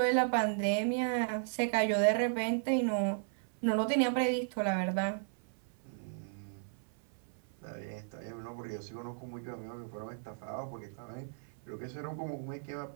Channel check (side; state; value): left; silent; 54 dB below the other